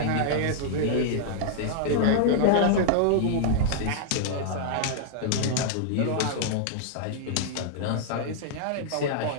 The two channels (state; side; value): different; both; correlation -0.01